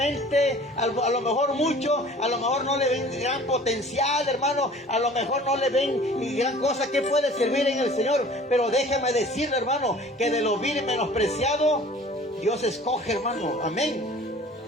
a lo mejor mucho, a lo mejor no le ven gran potencial, hermano, a lo mejor no le ven gran cosa que puede servir en el Señor, pero déjame decirle, hermano, que de lo vil y menospreciado, Dios escoge, hermano, amén.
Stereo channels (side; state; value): both; normal; correlation 0.47